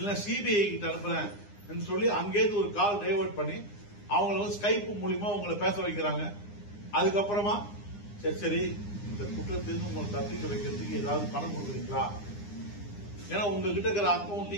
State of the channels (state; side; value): late; right; 9.8 ms